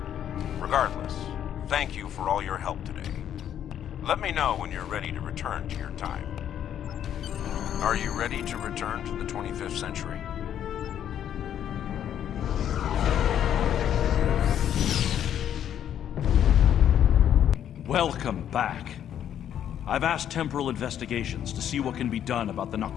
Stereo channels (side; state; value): right; quieter; 10.0 dB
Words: Regardless, thank you for all your help today. Let me know when you're ready to return to your time. Are you ready to return to the 25th century? Welcome back. I've asked Temporal Investigations to see what can be done about the